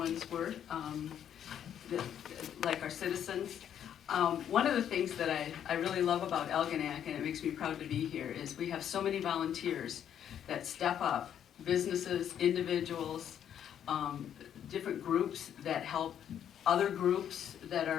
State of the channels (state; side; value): quieter; right; 9.5 dB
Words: were, like our citizens. One of the things that I really love about Algonac, and it makes me proud to be here, is we have so many volunteers that step up, businesses, individuals, different groups that help other groups that